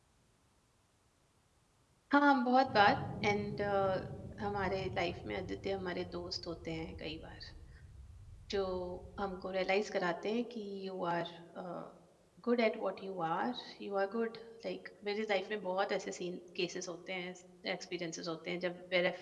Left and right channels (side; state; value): both; identical; correlation 1.00